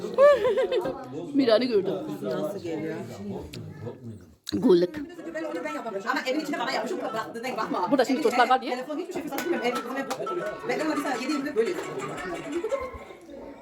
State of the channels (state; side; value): identical; both; correlation 1.00